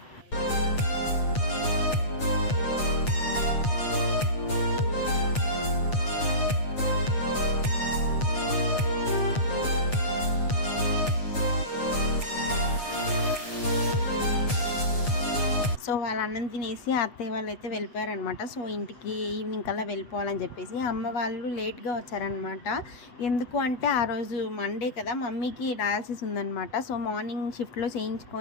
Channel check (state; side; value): late; right; 8.4 ms